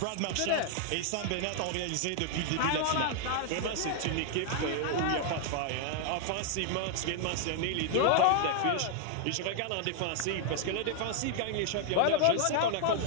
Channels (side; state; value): both; different; correlation 0.00